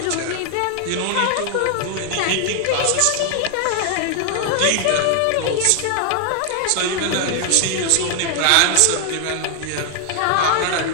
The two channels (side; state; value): both; different; correlation 0.00